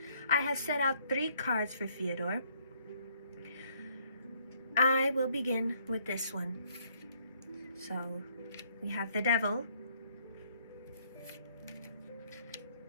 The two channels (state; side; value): inverted; both; correlation -0.65